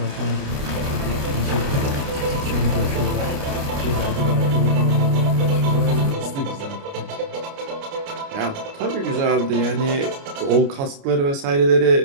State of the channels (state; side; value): late; left; 29 ms